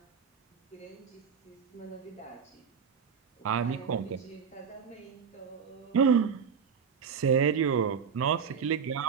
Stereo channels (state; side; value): quieter; left; 6.5 dB